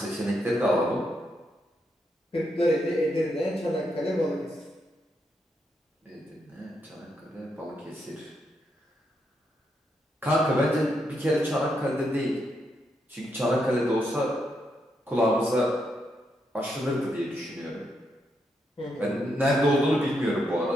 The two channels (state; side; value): normal; both; correlation 0.80